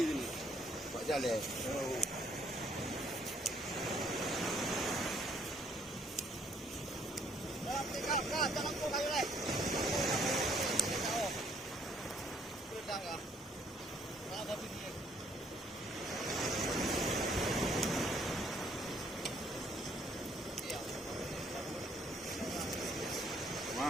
ini. Pak Jaleh.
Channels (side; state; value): both; normal; correlation 0.65